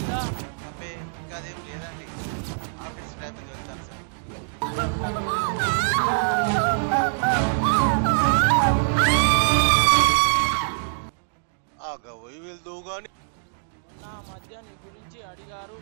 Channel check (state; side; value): silent; left; digital silence